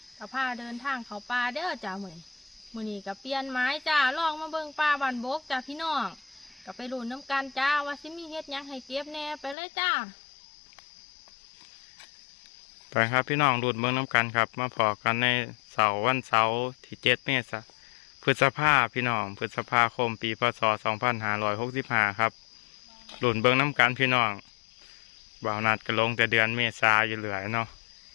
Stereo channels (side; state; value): right; drops out; at 9.6 s